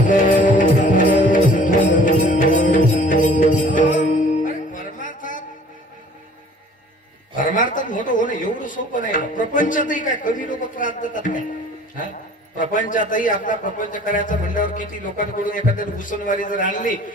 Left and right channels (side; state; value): both; normal; correlation 0.51